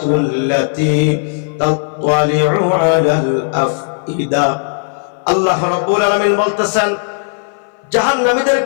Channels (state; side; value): silent; right; 60 dB below the other